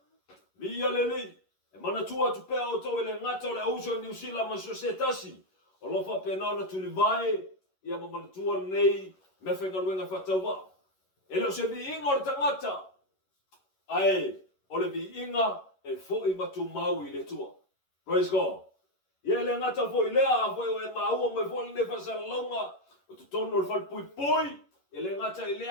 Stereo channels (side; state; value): right; late; 11 ms